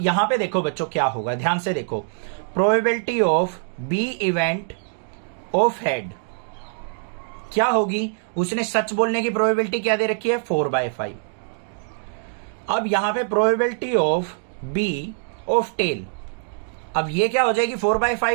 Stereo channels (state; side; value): silent; left; 63 dB below the other